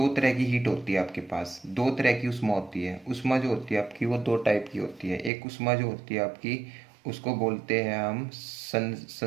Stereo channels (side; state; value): left; drops out; at 5.3 s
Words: तरह की हीट होती है आपके पास, दो तरह की उष्मा होती है। उष्मा जो होती है आपकी वो दो टाइप की होती है। एक उष्मा जो होती है आपकी उसको बोलते हैं हम